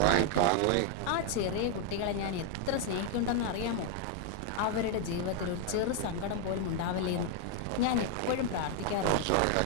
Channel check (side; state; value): both; different; correlation 0.00